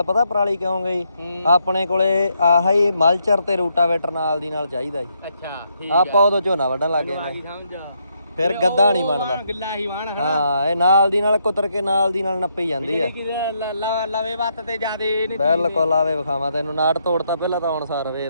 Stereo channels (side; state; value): both; inverted; correlation -0.77